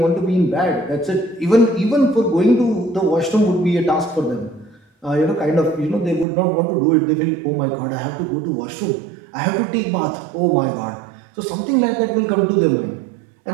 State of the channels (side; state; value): left; drops out; at 6.2 s